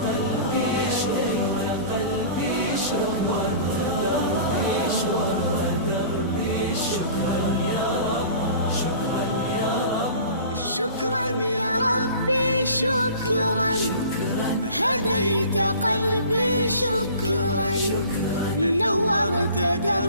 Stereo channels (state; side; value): inverted; both; correlation -0.43